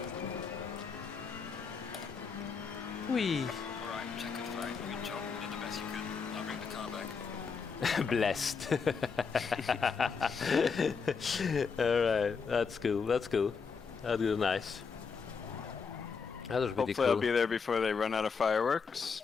Whee. Alright, check it right. Good job. You did the best you could. Now bring the car back. Blessed. All right, that's cool. That's cool. That was nice. That was pretty Hopefully cool. I'll be there before they run out of fireworks.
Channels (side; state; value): right; quieter; 5.5 dB